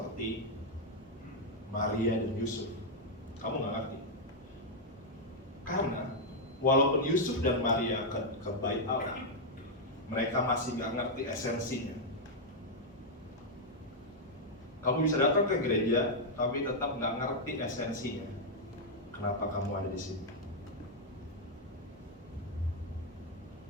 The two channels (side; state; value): both; normal; correlation -0.02